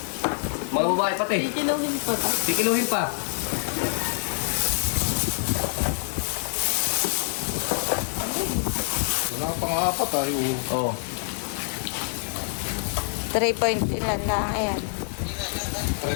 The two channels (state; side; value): silent; right; digital silence